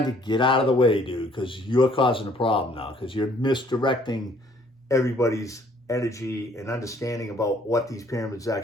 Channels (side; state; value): both; normal; correlation 0.61